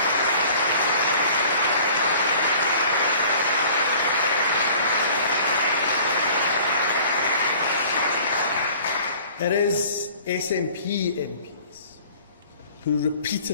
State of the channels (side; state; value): both; inverted; correlation -0.49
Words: It is SNP MPs who